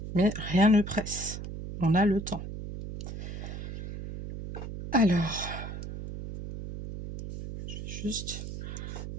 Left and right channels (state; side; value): noise; right; hum, 8 dB below the sound